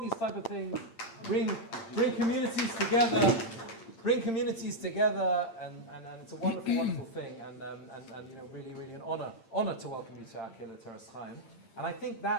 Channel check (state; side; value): late; right; 8.8 ms